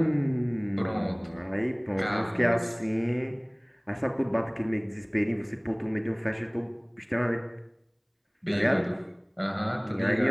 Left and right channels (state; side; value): identical; both; correlation 1.00